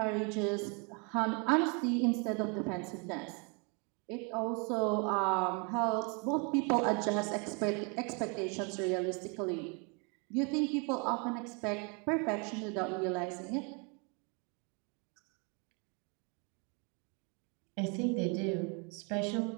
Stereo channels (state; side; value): quieter; left; 34.0 dB